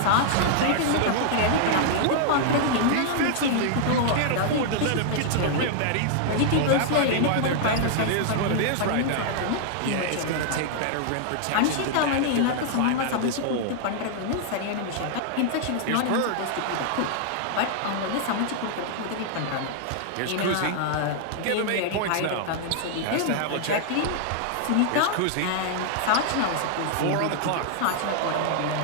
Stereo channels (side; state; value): both; different; correlation -0.01